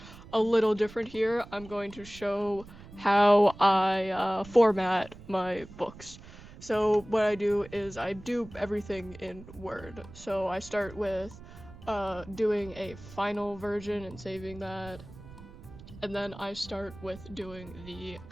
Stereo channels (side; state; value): right; noise; rumble, 17 dB below the sound